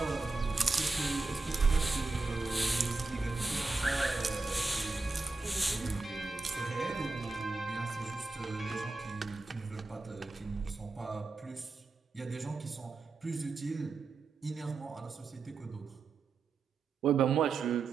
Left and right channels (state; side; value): quieter; left; 3.8 dB